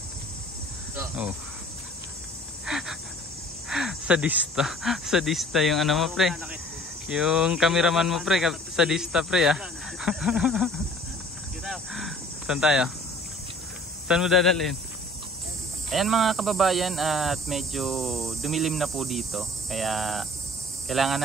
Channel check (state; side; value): normal; both; correlation 0.50